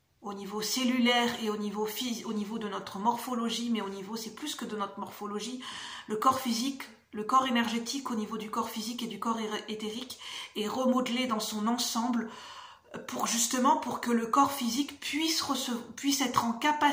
Au niveau cellulaire et au niveau de notre morphologie, mais c'est plus que de notre morphologie, le corps physique, le corps énergétique au niveau du corps physique et du corps éthérique est remodelé dans son ensemble pour que le corps physique puisse être en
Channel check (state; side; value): identical; both; correlation 1.00